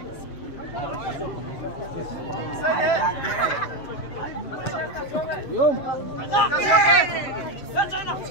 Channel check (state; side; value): late; right; 7.6 ms